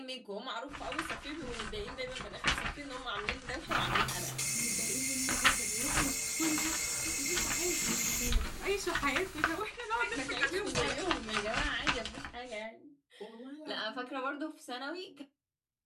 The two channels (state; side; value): identical; both; correlation 1.00